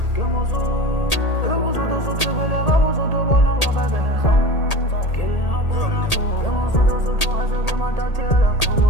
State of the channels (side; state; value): right; late; 1.8 ms